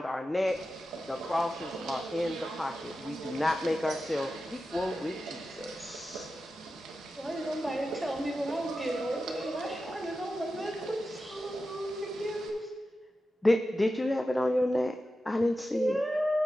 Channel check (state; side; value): normal; both; correlation 0.92